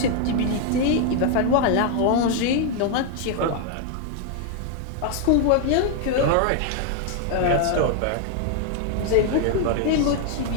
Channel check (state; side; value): different; both; correlation 0.01